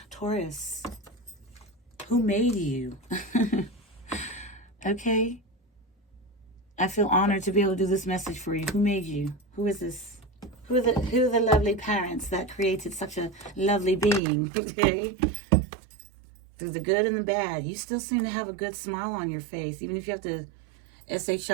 Taurus. Who made you? Okay? I feel honored to be able to do this message for you. Who made you? Who is this? Who are the lovely parents that created such a lovely being? Okay? Through the good and the bad, you still seem to have a good smile on your face. Even if you have to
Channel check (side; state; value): left; drops out; at 14.2 s